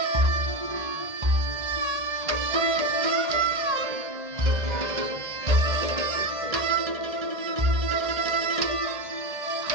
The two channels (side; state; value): left; late; 1.8 ms